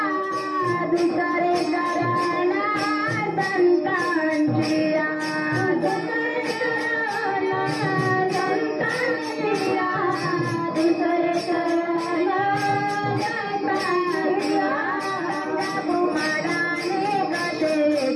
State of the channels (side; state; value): both; identical; correlation 1.00